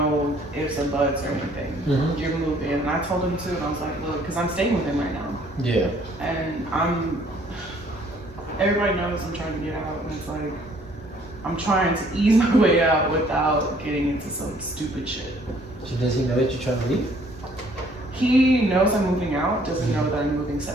ifs and buts or anything. Mhm. You're moving. And I told him too, and I was like, look, because I'm staying with him right now. Yeah. And everybody knows I'm trying to get out, and it's like, I'm trying to ease my way out without getting into some stupid shit. So does he know that you're trying to leave? He knows I'm moving out, doesn't know that I'm moving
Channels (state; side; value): normal; both; correlation 0.60